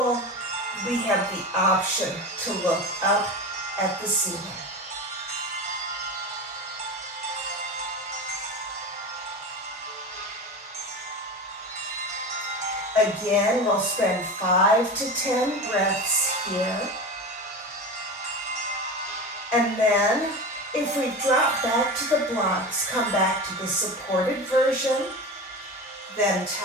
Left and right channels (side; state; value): both; normal; correlation 0.27